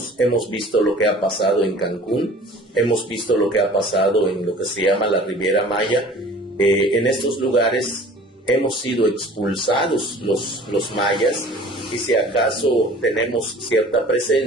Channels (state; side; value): normal; both; correlation 0.47